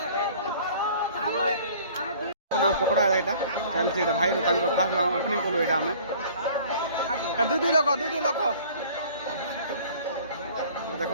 नाम पकड़ा एटा चलछि एटा भाई तांको फास्ट ओपनिंग कलो एटा हमें दुई लोक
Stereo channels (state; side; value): inverted; both; correlation -0.50